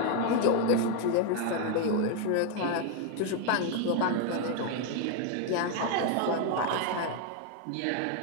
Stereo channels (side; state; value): both; different; correlation 0.01